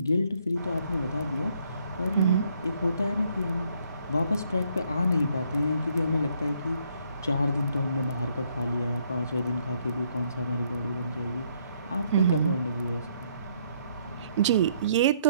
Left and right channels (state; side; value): inverted; both; correlation -0.68